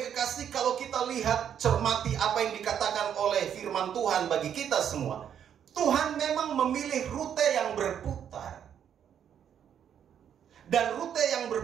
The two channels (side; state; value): left; quieter; 8.9 dB